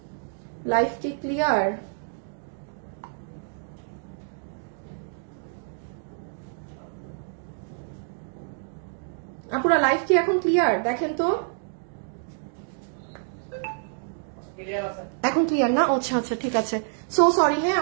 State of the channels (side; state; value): left; silent; digital silence